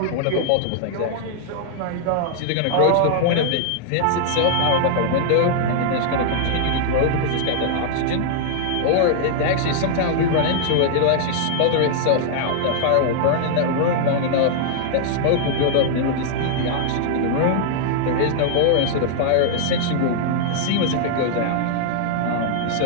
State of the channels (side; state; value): both; different; correlation -0.01